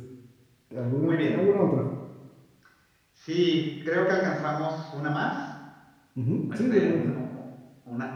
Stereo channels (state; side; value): identical; both; correlation 1.00